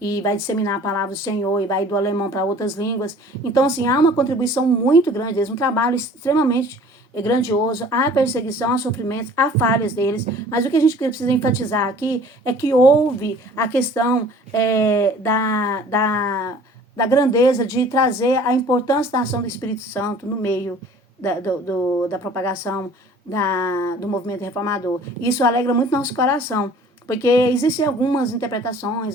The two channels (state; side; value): normal; both; correlation 0.50